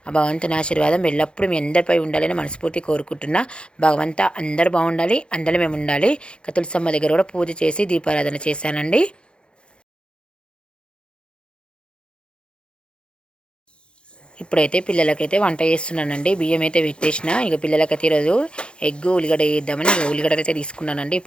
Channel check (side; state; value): right; late; 0.054 ms